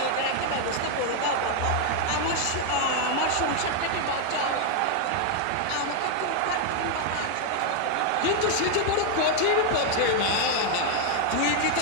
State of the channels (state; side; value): different; both; correlation 0.00